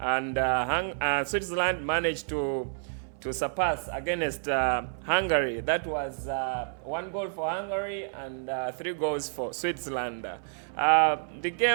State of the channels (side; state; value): left; silent; 58 dB below the other